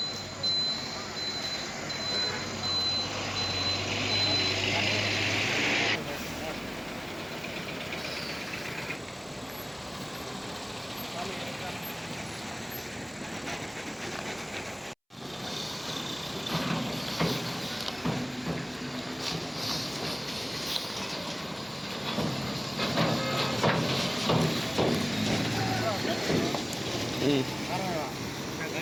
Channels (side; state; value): both; identical; correlation 1.00